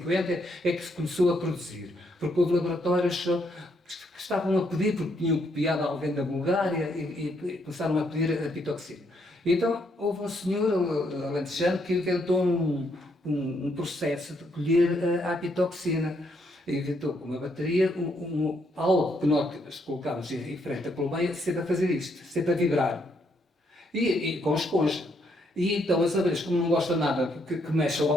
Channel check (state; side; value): normal; both; correlation 0.74